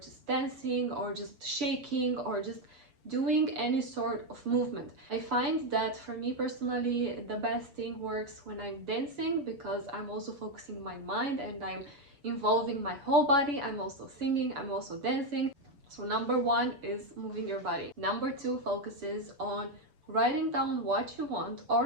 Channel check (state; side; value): late; left; 7.0 ms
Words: dancing, or just shaking, or just doing any sort of movement. I find that for me personally, the best thing works when I'm dancing, because I'm also focusing my mind and I'm involving my whole body. I'm also singing, I'm also dancing. So number one is moving your body. Number two focuses on writing down what you want